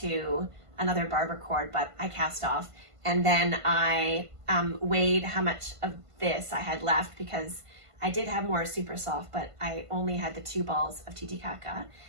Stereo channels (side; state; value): left; late; 1.5 ms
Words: another barber cord, but I cast off. And then I weighed how much of this I had left because I did have more Super Soft, but I only had the 2 balls of Titicaca.